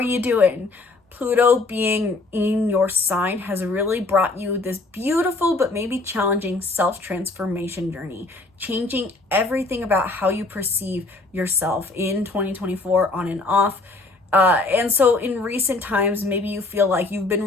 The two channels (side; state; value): right; quieter; 3.2 dB